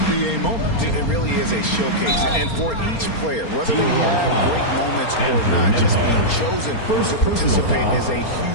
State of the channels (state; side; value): late; right; 4.3 ms